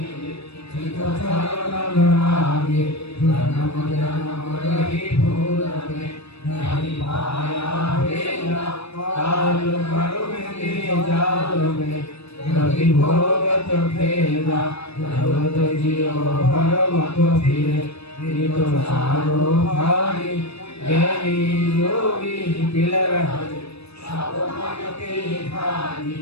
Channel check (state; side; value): late; right; 0.78 ms